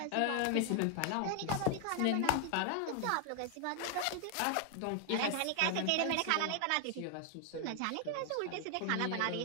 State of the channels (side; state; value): both; different; correlation 0.00